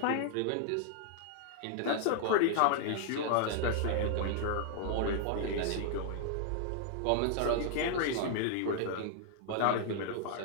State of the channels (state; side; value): different; both; correlation 0.00